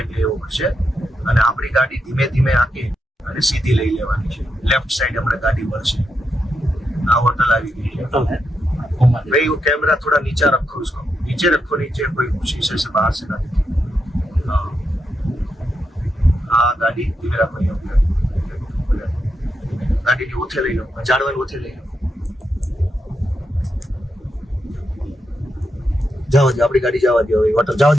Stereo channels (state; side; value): normal; both; correlation 0.84